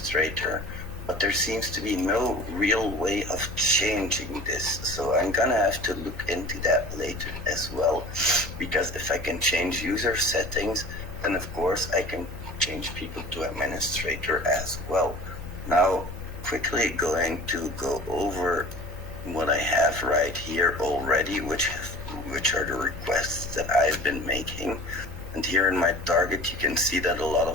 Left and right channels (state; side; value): normal; both; correlation 0.42